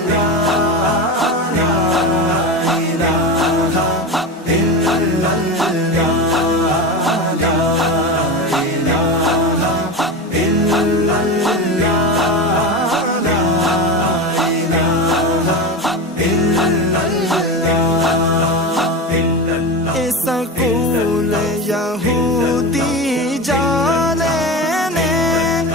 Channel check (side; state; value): both; normal; correlation 0.23